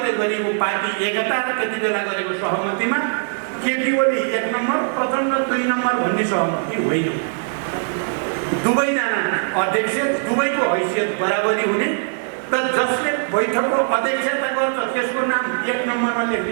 गरिएको पार्टी एकता र त्यति बेला गरेको सहमतिमा केपी ओली 1 नम्बर, प्रचण्ड 2 नम्बर भन्ने सहमति होइन। दुवैजना अध्यक्ष, दुवैको हैसियत बराबरी हुने र जसले बैठकको अध्यक्षता गर्छ त्यसको नाम 1 नम्बरमा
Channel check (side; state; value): left; silent; 61 dB below the other